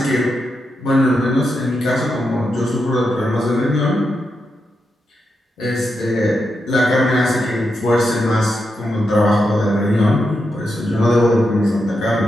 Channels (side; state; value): both; normal; correlation 0.85